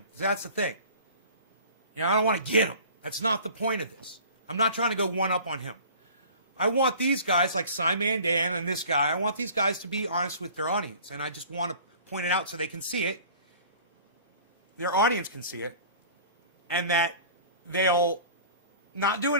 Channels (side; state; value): both; inverted; correlation -0.45